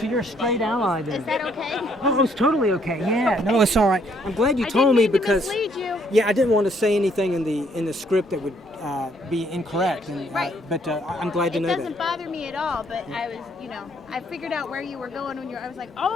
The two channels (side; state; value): both; normal; correlation 0.67